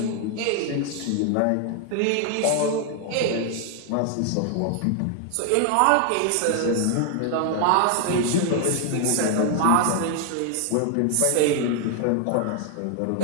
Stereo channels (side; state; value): both; different; correlation 0.00